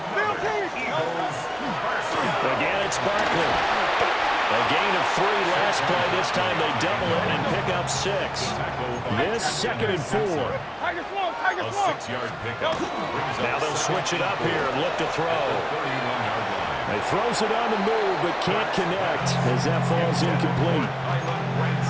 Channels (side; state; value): both; identical; correlation 1.00